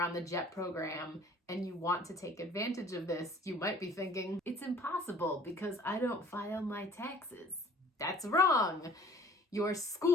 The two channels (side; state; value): both; normal; correlation 0.51